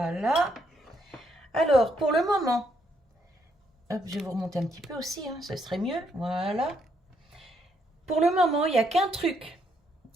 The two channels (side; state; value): both; normal; correlation 0.74